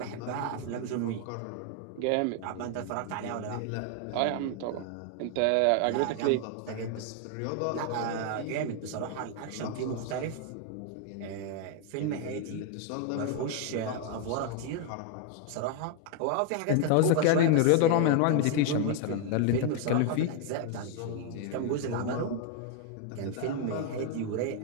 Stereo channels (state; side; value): different; both; correlation 0.00